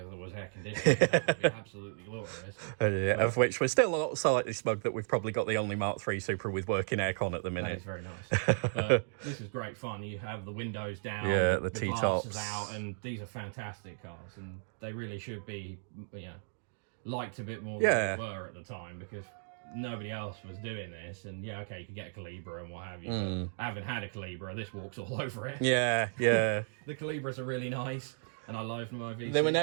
was air conditioning. That would be absolutely glorious. Of which we're still slightly smug that we've probably got the only Mark III Supra with working aircon at the minute. That is very nice. But this is great fun. You have the windows down, the T-tops out, and these are fantastic cars, and they really should be, liked a bit more than they were at the time, because nobody else was doing this. And you could get a Calibra and what have you, but I haven't had a Calibra. This walks all over it. The Calibras are really nice, and I love my V6. They were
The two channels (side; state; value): left; silent; digital silence